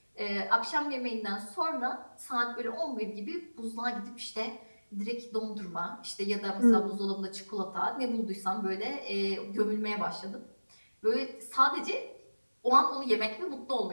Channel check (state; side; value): inverted; both; correlation -1.00